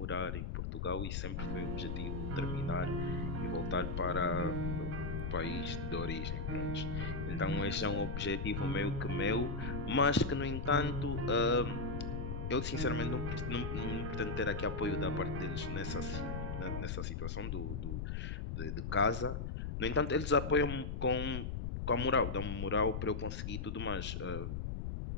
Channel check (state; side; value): noise; left; rumble, 3 dB below the sound